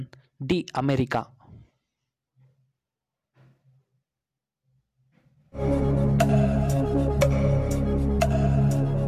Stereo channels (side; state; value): both; identical; correlation 1.00